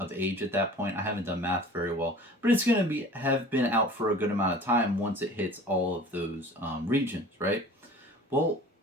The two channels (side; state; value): both; normal; correlation 0.44